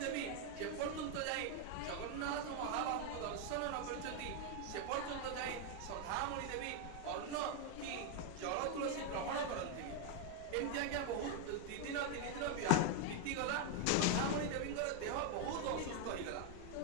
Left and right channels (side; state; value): both; different; correlation 0.01